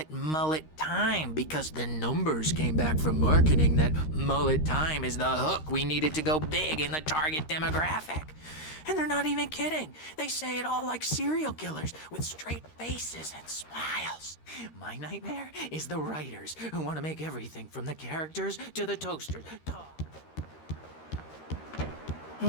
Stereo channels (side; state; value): right; late; 13 ms